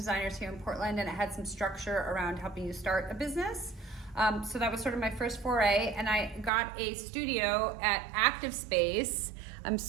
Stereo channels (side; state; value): left; drops out; at 6.5 s